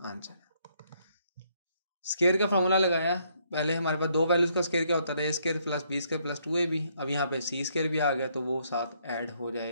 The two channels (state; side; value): inverted; both; correlation -0.70